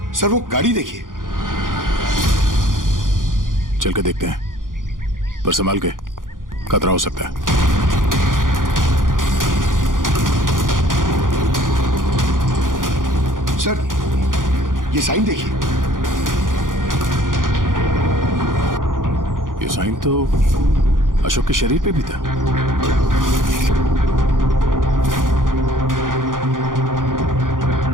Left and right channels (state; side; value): late; left; 0.89 ms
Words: सर वो गाड़ी देखिए। चल के देखते हैं, पर संभाल के, खतरा हो सकता है। सर ये साइन देखिए। ये साइन तो अशोक के शरीर पे भी था।